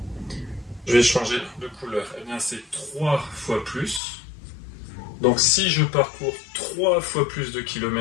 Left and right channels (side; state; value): right; drops out; at 4.0 s